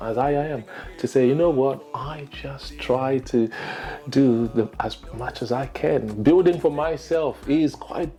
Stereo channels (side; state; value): both; identical; correlation 1.00